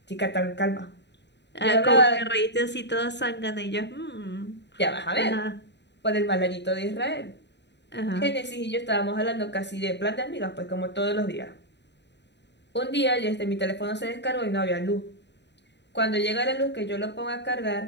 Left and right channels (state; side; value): late; right; 0.51 ms